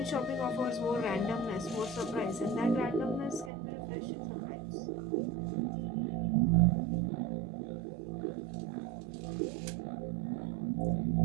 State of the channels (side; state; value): left; drops out; at 3.5 s